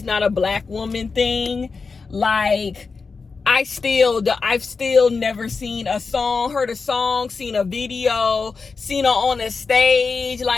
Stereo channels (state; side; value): quieter; right; 4.6 dB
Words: not a black woman thing, like, I've still never seen a song, heard a song, seen a video, seen her on a stage.